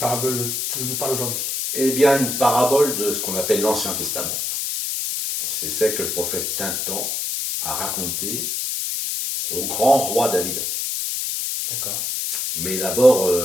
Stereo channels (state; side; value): noise; left; hiss, 1 dB below the sound